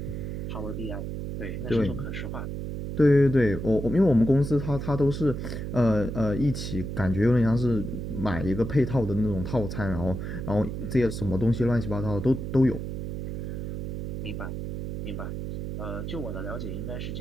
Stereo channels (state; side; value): noise; right; hum, 5 dB below the sound